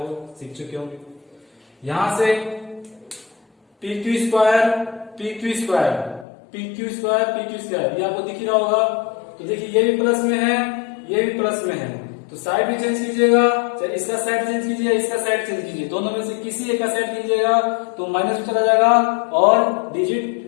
सीख चुके होंगे। यहां से P Q square P Q square P Q square P Q square ये आपको दिख ही रहा होगा। तो देखिए ये भी प्लस में है, ये भी प्लस में है, तो साइड भी चेंज कीजिएगा, चाहे इसका साइड चेंज कीजिए, इसका साइड चेंज कीजिए, दोनों में से किसी एक का साइड कीजिएगा तो माइनस में चला जाएगा और डिजिट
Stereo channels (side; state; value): right; drops out; at 6.2 s